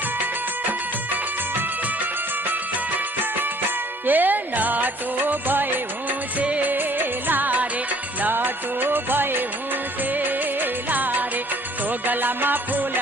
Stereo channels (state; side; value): normal; both; correlation 0.57